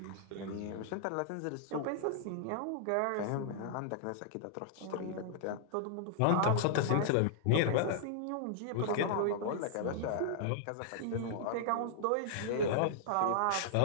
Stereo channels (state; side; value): different; both; correlation -0.01